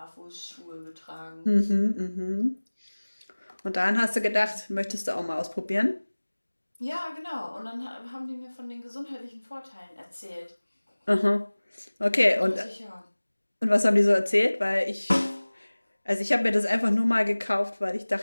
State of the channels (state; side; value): inverted; both; correlation -1.00